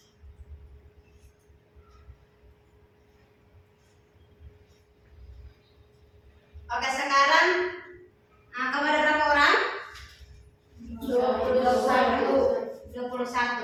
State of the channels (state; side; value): identical; both; correlation 1.00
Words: oke, sekarang kamu ada berapa orang?